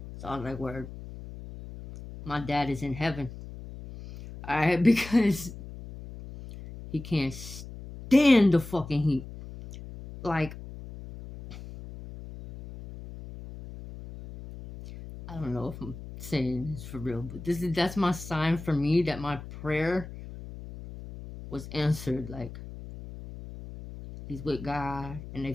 so I was like, word, my dad is in heaven. All right, because he can't stand the fucking heat. Like, I don't know if I'm saying this for real, but that's my sign for me that my prayer was answered. Like, he's with God and they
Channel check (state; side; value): noise; left; hum, 13 dB below the sound